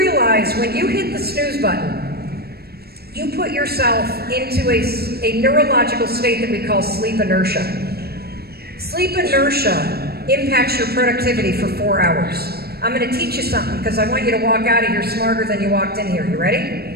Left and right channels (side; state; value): left; late; 0.46 ms